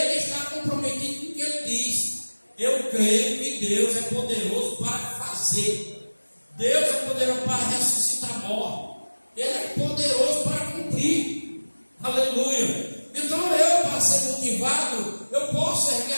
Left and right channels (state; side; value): inverted; both; correlation -1.00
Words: está comprometido com o que ele diz. Eu creio que Deus é poderoso para fazer. Deus é poderoso para ressuscitar mortos. Ele é poderoso para cumprir. Aleluia. Então eu, para ser motivado, eu posso erguer